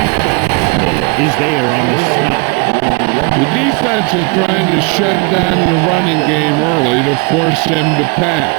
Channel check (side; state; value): left; quieter; 31.1 dB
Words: is there on the stop. The defense is trying to shut down the running game early to force him to pass.